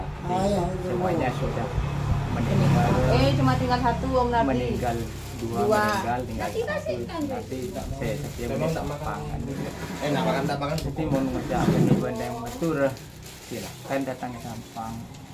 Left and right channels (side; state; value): both; identical; correlation 1.00